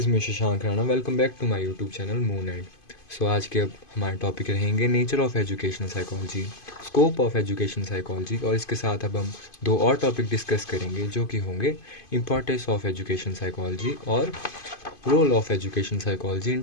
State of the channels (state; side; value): late; right; 2.5 ms